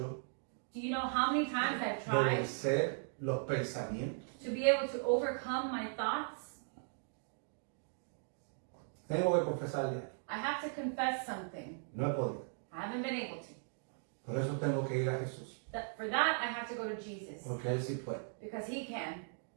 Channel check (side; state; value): left; silent; digital silence